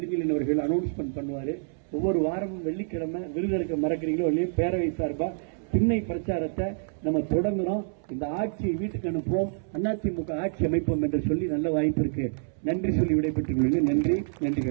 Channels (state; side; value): silent; left; 60 dB below the other